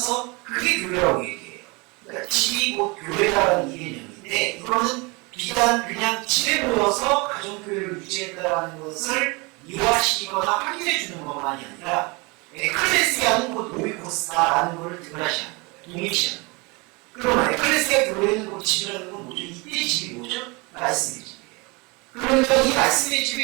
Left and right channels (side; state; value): left; quieter; 27.7 dB